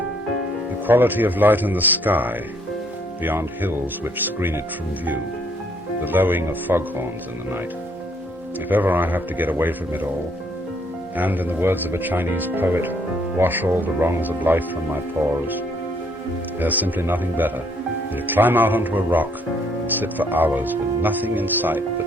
The quality of light in the sky, beyond hills which screen it from view. The lowing of foghorns in the night. If ever I have to get away from it all, and, in the words of a Chinese poet, wash all the wrongs of life from my pores, there's simply nothing better than to climb out onto a rock and sit for hours with nothing in sight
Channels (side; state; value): both; normal; correlation 0.67